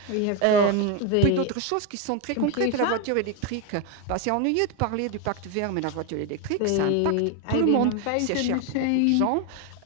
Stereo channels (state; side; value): different; both; correlation 0.02